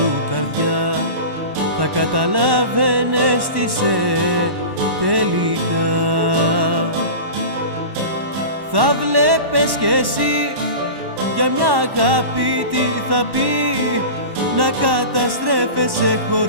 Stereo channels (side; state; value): left; late; 1.1 ms